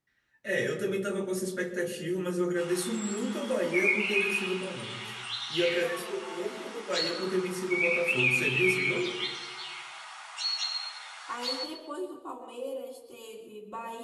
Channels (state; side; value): identical; both; correlation 1.00